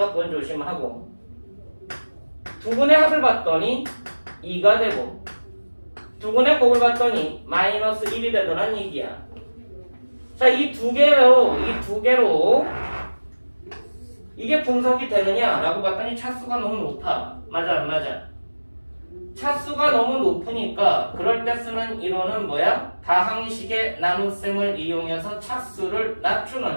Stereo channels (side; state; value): both; inverted; correlation -1.00